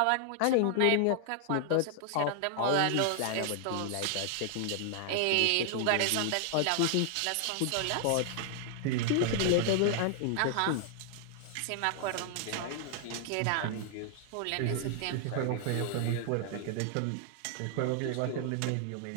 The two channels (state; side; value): different; both; correlation 0.00